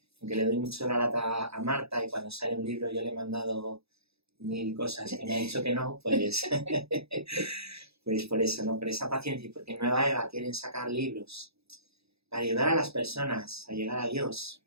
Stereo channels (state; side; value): late; left; 0.78 ms